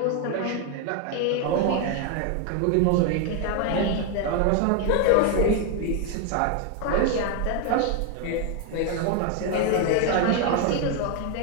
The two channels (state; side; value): different; both; correlation 0.01